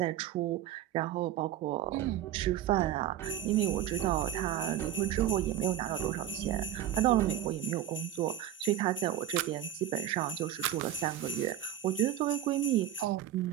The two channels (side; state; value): left; quieter; 11.7 dB